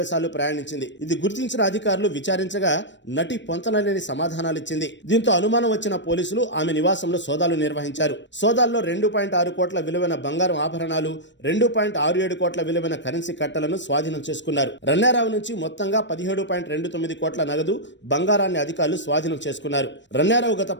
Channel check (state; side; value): late; right; 0.53 ms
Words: సార్లు ప్రయాణించింది. ఇది గుర్తించిన అధికారులు విచారించగా నటి పొంతనలేని సమాధానాలిచ్చింది. దీంతో అనుమానం వచ్చిన పోలీసులు ఆమె నివాసంలో సోదాలు నిర్వహించారు. సోదాల్లో 2.6 కోట్ల విలువైన బంగారం ఆభరణాలు, 2.67 కోట్ల విలువైన కరెన్సీ కట్టలను స్వాధీనం చేసుకున్నారు. రన్యారావు నుంచి మొత్తంగా 17.29 కోట్ల నగదు, బంగారాన్ని అధికారులు స్వాధీనం చేసుకున్నారు. రన్యారావు గత